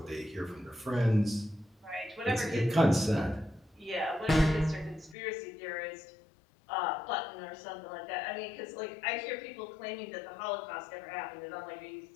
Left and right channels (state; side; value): drops out; right; at 5.2 s